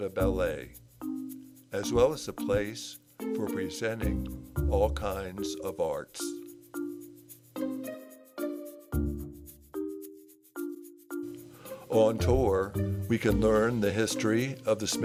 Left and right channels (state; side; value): identical; both; correlation 1.00